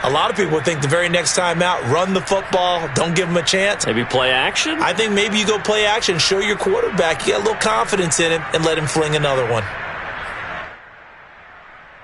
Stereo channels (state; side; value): identical; both; correlation 1.00